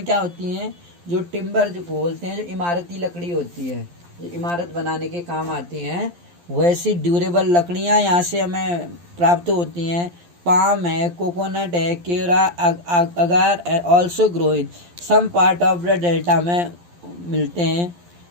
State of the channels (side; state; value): left; late; 11 ms